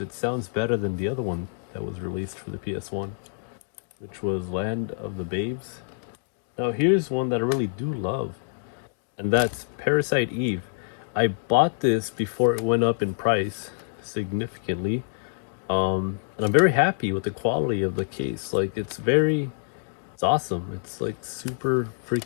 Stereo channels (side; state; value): right; silent; digital silence